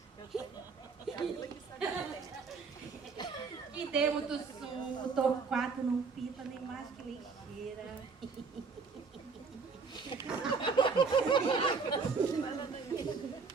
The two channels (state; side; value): quieter; left; 4.9 dB